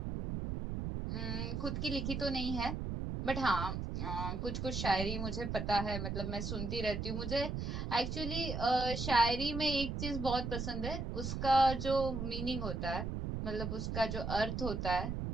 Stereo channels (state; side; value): noise; right; rumble, 3 dB below the sound